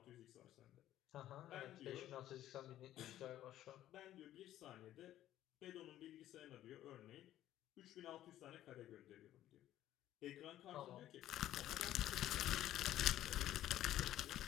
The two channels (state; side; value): quieter; right; 13.0 dB